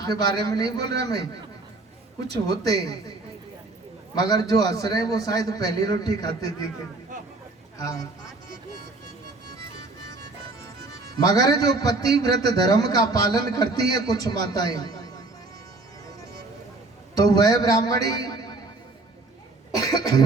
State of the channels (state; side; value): quieter; left; 3.2 dB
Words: बारे में नहीं बोल रहा मैं, कुछ होते हैं, मगर जो हंस रहे वो शायद पहली रोटी खाते दिखे। हाँ, मगर जो पतिव्रत धर्म का पालन करती है कुछ माताएं, तो वह ब्राह्मणी